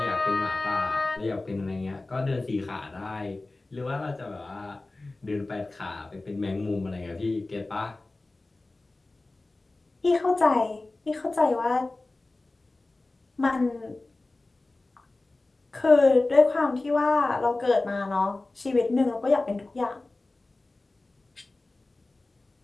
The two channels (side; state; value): right; quieter; 3.1 dB